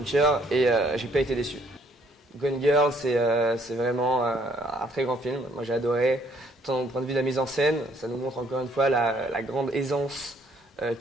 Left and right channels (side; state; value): both; normal; correlation 0.65